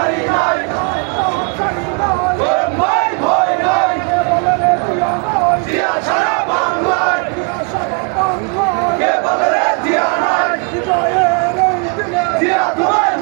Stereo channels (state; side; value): quieter; left; 34.5 dB